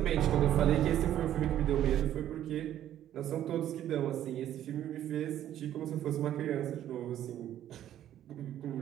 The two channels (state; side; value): quieter; left; 11.7 dB